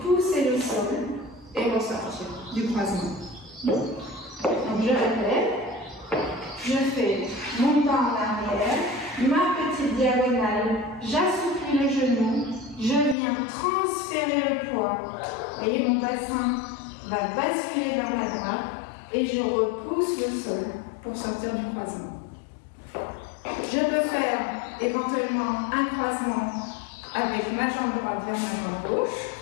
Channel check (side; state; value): right; drops out; at 13.2 s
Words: pousser le sol et ressortir du croisement. Donc je répète, je fais mon pas en arrière, ma petite diagonale, j'assouplis le genou, je viens transférer le poids. Vous voyez, mon bassin va basculer vers la droite et je repousse le sol pour sortir du croisement. Je peux faire éventuellement un croisement avec ma jambe droite vers ma jambe gauche.